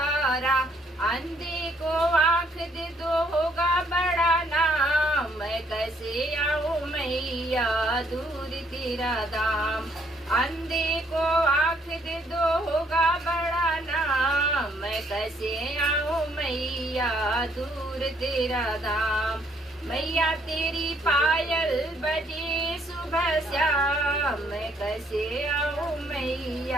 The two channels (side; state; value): both; normal; correlation 0.67